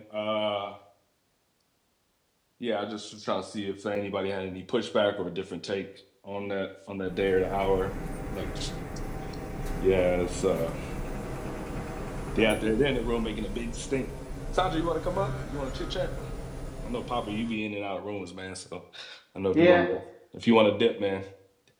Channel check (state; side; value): identical; both; correlation 1.00